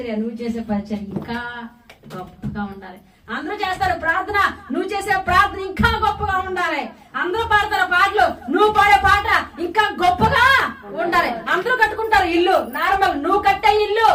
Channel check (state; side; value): identical; both; correlation 1.00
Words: నువ్వు చేసే పరిచర్య ఇంకా గొప్పగా ఉండాలి. అందరూ చేస్తారు ప్రార్థన, నువ్వు చేసే ప్రార్థన ఇంకా గొప్పగా ఉండాలి. అందరూ పాడతారు పాటలు, నువ్వు పాడే పాట ఇంకా గొప్పగా ఉండాలి. అందరూ కట్టుకుంటారు ఇల్లు నార్మల్, నువ్వు కట్టే ఇల్లు